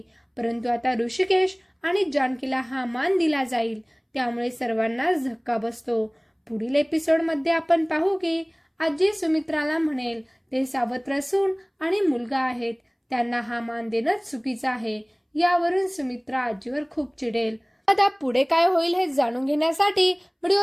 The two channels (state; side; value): identical; both; correlation 1.00